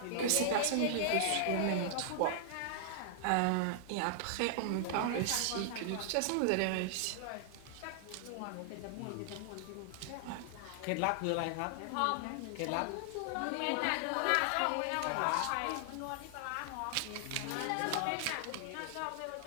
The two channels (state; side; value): different; both; correlation -0.01